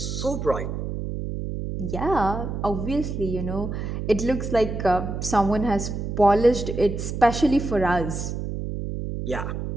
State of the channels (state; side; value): noise; right; hum, 4 dB below the sound